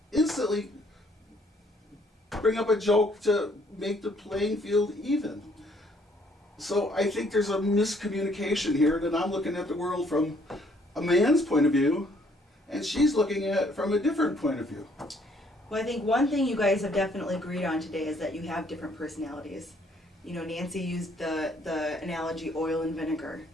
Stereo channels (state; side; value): normal; both; correlation 0.65